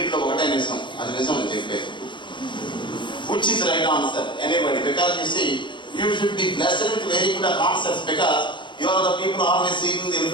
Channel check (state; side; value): late; right; 0.23 ms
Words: ఒకటే నిజం, అది నిజం అని చెప్పేది. Which is right answer? Anybody? Because you see, you should be blessed with very good concepts, because you are the people always seeking the